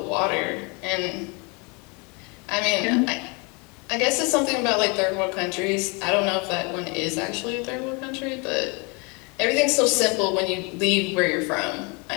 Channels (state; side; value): quieter; right; 30.8 dB